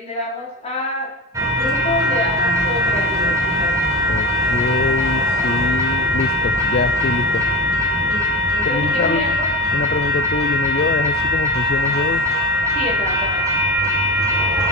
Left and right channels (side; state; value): both; normal; correlation 0.27